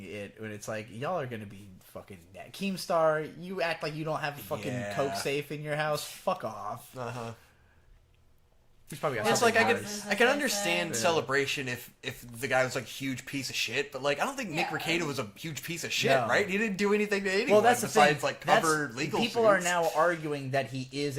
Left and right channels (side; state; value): both; identical; correlation 1.00